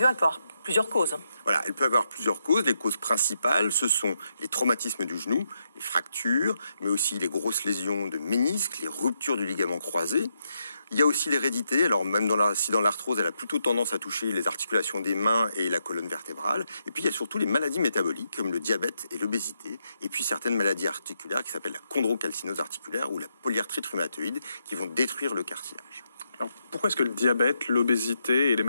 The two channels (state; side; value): inverted; both; correlation -0.81